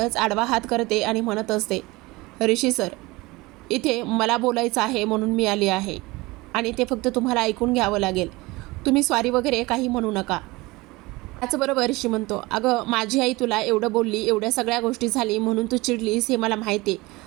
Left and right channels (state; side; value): quieter; left; 22.0 dB